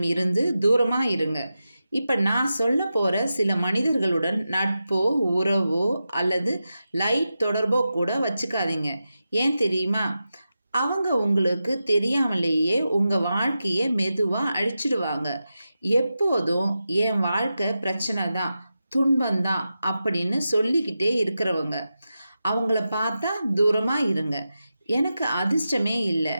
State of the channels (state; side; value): inverted; both; correlation -0.91